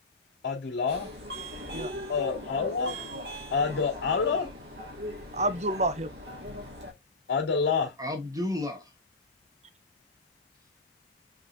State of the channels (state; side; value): quieter; right; 3.1 dB